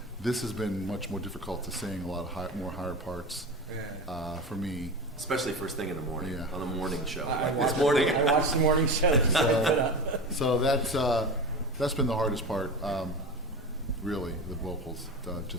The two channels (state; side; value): normal; both; correlation 0.27